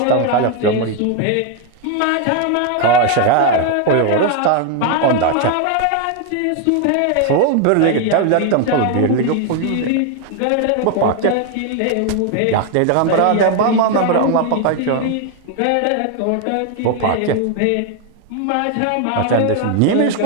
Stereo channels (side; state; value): both; different; correlation 0.01